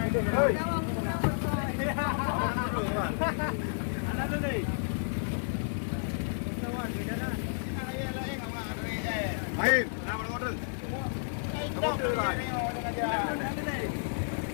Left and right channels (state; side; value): silent; right; digital silence